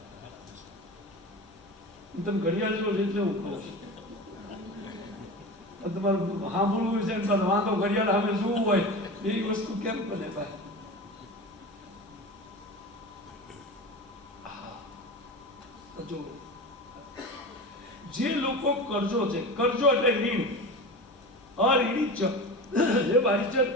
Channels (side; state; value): left; noise; hum, 28 dB below the sound